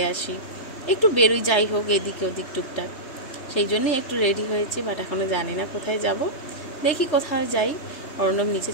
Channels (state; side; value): late; right; 3.3 ms